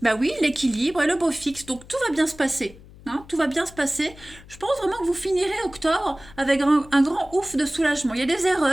Ben oui, l'équilibre et le beau fixe, donc tout va bien se passer. Hein, tout va bien se passer. Je pense vraiment que vous finirez octobre avec un grand ouf de soulagement. Il y a des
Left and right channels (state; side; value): noise; left; hum, 21 dB below the sound